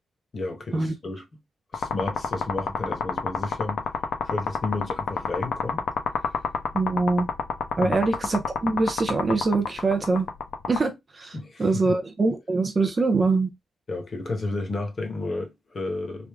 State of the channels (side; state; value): both; normal; correlation 0.83